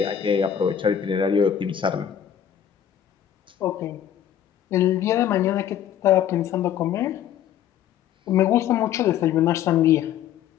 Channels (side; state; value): right; quieter; 10.0 dB